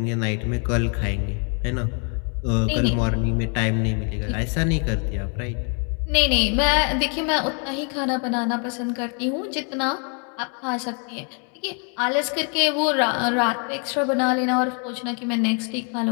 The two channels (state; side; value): quieter; right; 39.0 dB